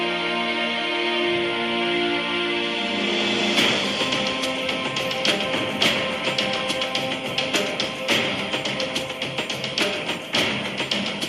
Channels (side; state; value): both; identical; correlation 1.00